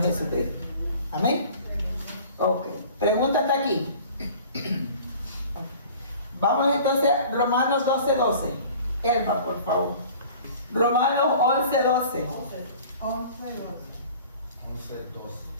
Jesucristo. Amén. Ok. Pregunta hasta aquí. Vamos entonces a Romanos 12:12. Elba, por favor. Romanos 11:12.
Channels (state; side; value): inverted; both; correlation -0.46